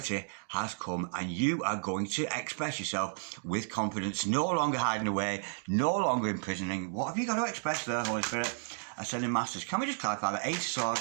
has come and you are going to express yourself with confidence. No longer hiding away, no longer imprisoning. What have you got to express there, Holy Spirit? Ascending Masters. Can we just clarify the Eight of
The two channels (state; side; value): silent; left; digital silence